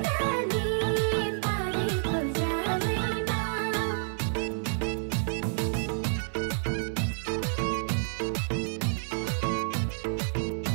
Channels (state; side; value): silent; left; 58 dB below the other